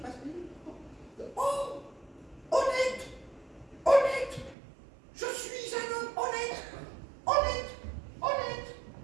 Oh, honnête, honnête. Je suis un homme honnête, honnête, honnête.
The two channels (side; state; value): left; drops out; at 4.5 s